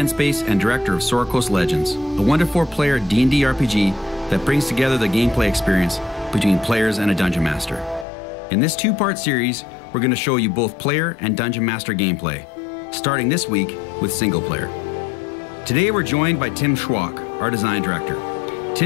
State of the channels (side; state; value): right; drops out; at 8.1 s